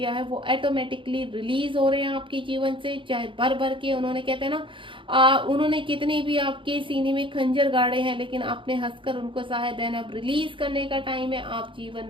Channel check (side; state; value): left; late; 0.25 ms